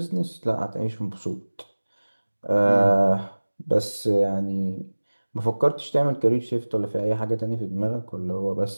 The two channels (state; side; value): inverted; both; correlation -1.00